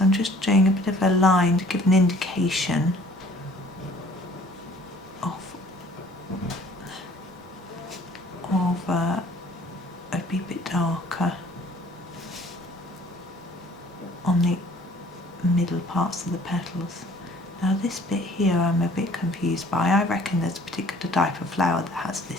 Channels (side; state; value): both; normal; correlation 0.54